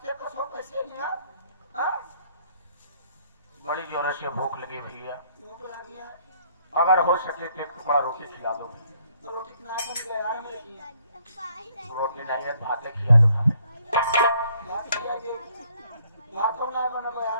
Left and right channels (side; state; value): both; inverted; correlation -0.65